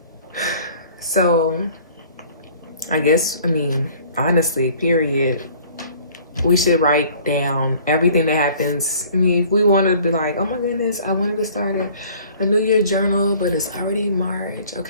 So, honestly, period. We should write down everything that happens. If we want to be like, oh my goodness, I wanted to start a New Year journal, but it's already March.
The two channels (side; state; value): both; inverted; correlation -0.52